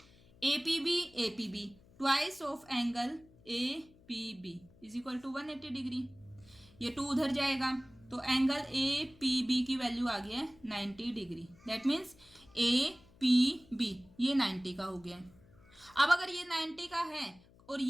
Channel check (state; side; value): noise; left; hum, 26 dB below the sound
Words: APB twice of angle APB is equal to 180 degree. ये 2 उधर जाएगा तो एंगल APB की वैल्यू आ गया है 90 डिग्री। दैट मीन्स APB ये 90 का हो गया। अब अगर ये 90 का है और